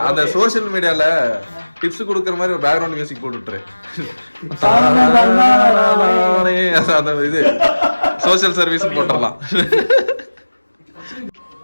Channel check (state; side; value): inverted; both; correlation -1.00